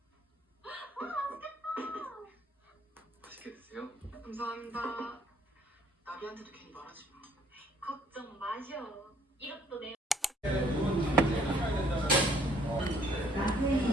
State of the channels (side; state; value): both; normal; correlation 0.62